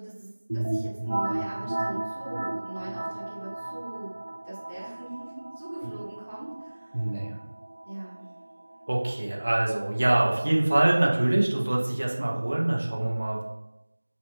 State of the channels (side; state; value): both; inverted; correlation -1.00